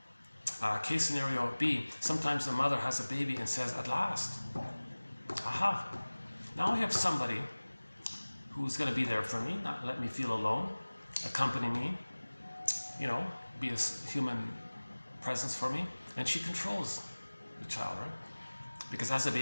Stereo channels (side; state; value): both; inverted; correlation -1.00